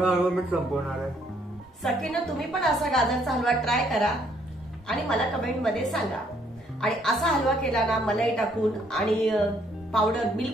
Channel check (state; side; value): normal; both; correlation 0.67